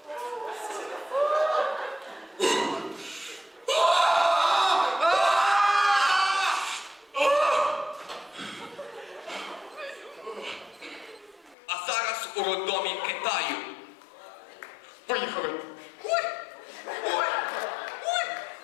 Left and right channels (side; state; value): right; drops out; at 11.6 s